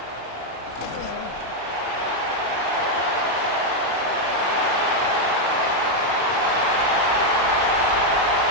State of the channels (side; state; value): left; late; 35 ms